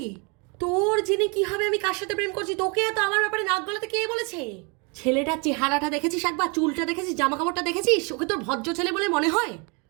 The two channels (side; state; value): left; quieter; 32.5 dB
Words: তোর জেনে কি হবে আমি কার সাথে প্রেম করছি? তোকে এত আমার ব্যাপারে নাক গলাতে কে বলেছে? ছেলেটার চেহারাটা দেখেছিস একবার? চুলটা দেখেছিস? জামা কাপড়টা দেখেছিস? ওকে তোর ভদ্র ছেলে বলে মনে হয়?